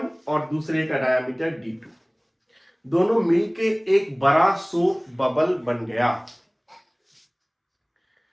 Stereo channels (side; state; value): both; identical; correlation 1.00